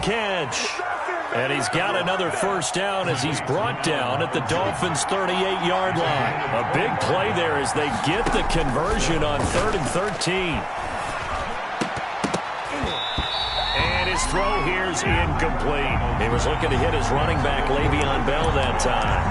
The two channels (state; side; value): identical; both; correlation 1.00